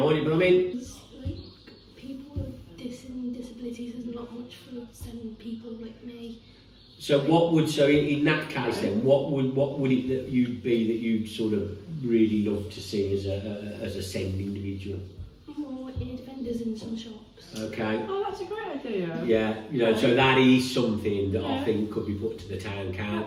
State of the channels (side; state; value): both; identical; correlation 1.00